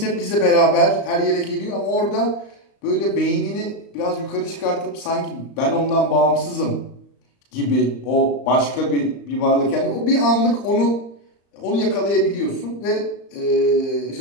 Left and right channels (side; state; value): right; late; 34 ms